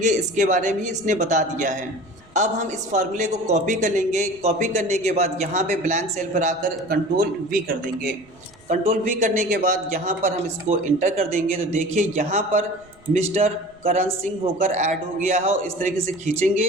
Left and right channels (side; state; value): right; noise; rumble, 29 dB below the sound